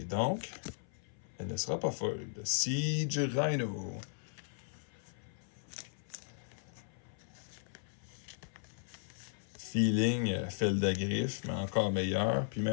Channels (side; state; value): right; silent; 53 dB below the other